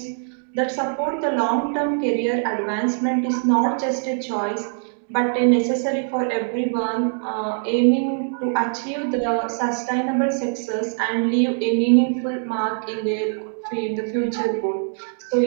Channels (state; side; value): silent; left; digital silence